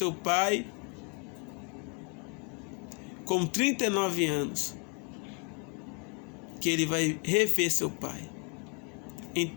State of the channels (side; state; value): right; quieter; 32.7 dB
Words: pai com 39 anos. que ele vai rever seu pai.